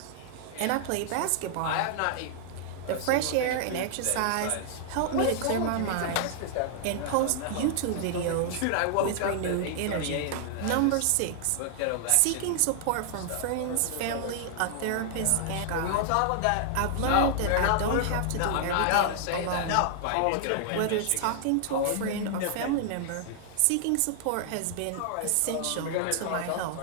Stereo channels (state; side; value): different; both; correlation -0.01